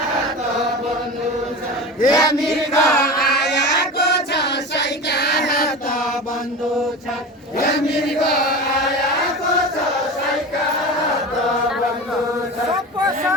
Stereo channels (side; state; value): both; normal; correlation 0.29